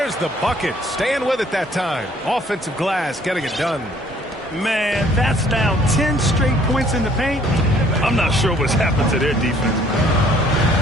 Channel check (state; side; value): normal; both; correlation 0.59